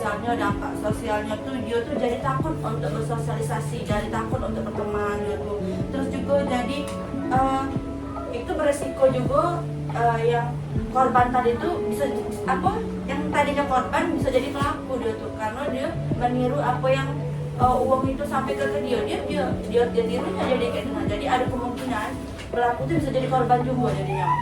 dampak sosialnya tuh dia tuh jadi takut untuk bersosialisasi, jadi takut untuk berteman gitu. Terus juga jadi itu beresiko juga yang korban tadi tuh bisa yang tadinya korban bisa jadi pelaku dia tuh, karena dia meniru apa yang uang itu sampai ke dia tirunya jadi kayak gitu. Jadi ada kemungkinan pelaku itu bisa jadi korban juga jadinya.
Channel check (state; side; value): identical; both; correlation 1.00